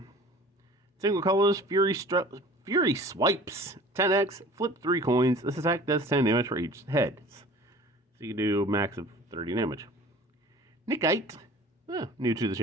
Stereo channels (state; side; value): normal; both; correlation 0.45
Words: Single colors, Fury Swipes, 10x, flip 3 coins. This attack does 10 damage for each head. So you can do a max of 30 damage. Nickite, new to the